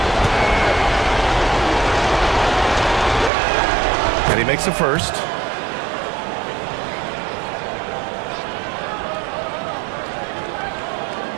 And he makes the first.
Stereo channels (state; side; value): drops out; left; at 3.3 s